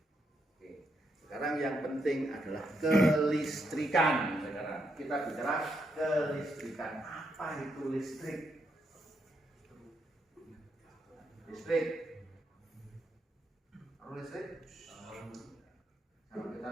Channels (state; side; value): normal; both; correlation 0.79